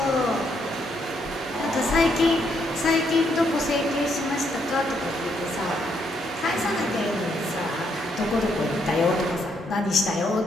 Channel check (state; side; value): normal; both; correlation 0.74